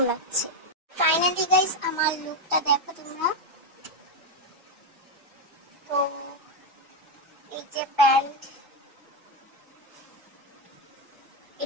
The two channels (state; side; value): normal; both; correlation 0.06